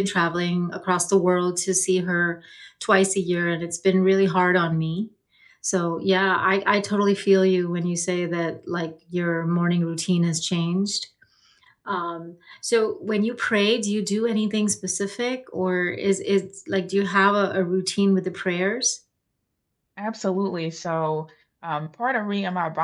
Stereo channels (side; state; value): both; identical; correlation 1.00